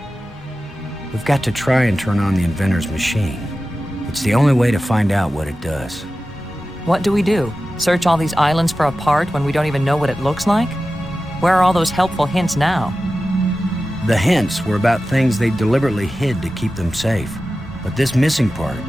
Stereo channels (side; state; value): both; normal; correlation 0.94